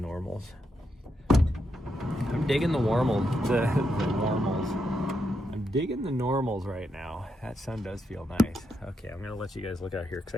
I'm digging the normals. The normals. I'm digging the normals right now. That sun does feel nice. Okay, I'm gonna let you guys look out here because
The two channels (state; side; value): normal; both; correlation 0.82